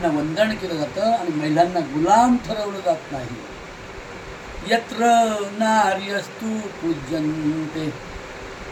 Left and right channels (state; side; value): identical; both; correlation 1.00